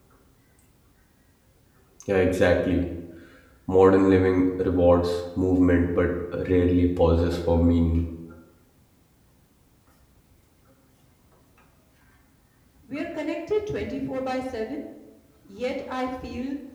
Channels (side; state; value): both; identical; correlation 1.00